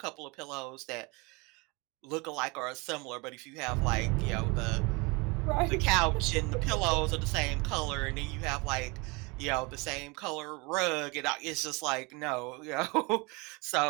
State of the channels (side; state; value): left; quieter; 27.5 dB